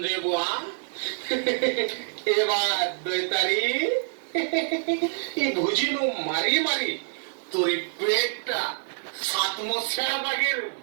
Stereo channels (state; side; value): silent; left; digital silence